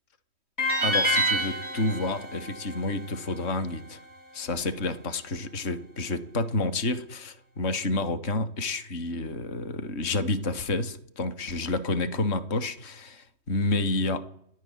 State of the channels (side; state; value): right; late; 3.2 ms